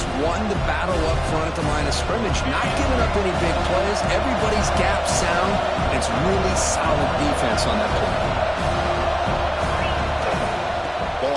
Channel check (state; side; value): identical; both; correlation 1.00